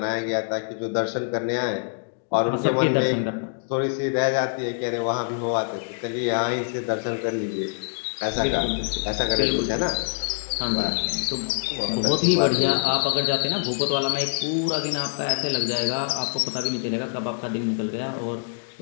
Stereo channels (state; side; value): silent; right; digital silence